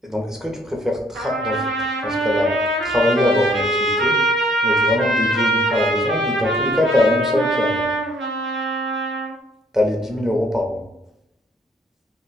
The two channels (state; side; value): normal; both; correlation 0.64